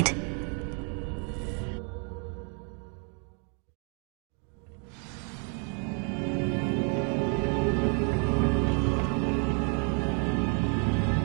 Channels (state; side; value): quieter; left; 39.4 dB